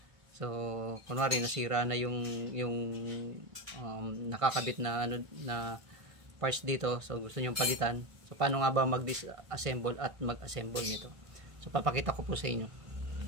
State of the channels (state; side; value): late; left; 1.5 ms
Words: So, kunwari nasira na yung nakakabit na na parts dito. So, gusto niyo palitan. So, paano nga ba mag-disassemble at mag-assemble nito? So, papakita ko po sa inyo.